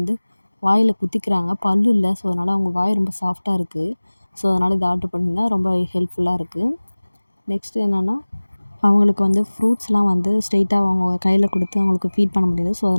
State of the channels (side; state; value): both; inverted; correlation -1.00